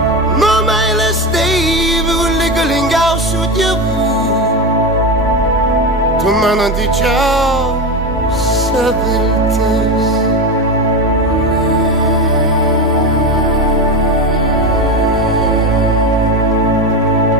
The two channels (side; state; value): both; normal; correlation 0.18